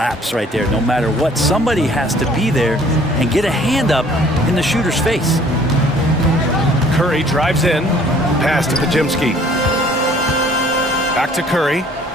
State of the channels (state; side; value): normal; both; correlation 0.56